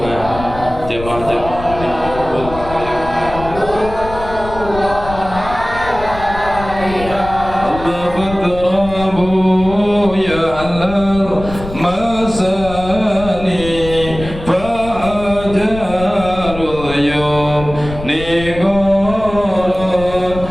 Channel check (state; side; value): noise; left; rumble, 11 dB below the sound